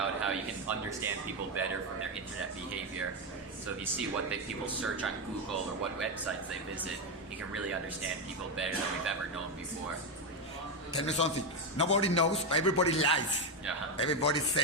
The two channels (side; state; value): both; normal; correlation 0.08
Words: how you can understand people better from their internet behavior. So if you see what people search on Google or what websites they visit, you can really understand people better than we've ever known before. Tell me something. Nobody knows, everybody lies. Yeah. Everybody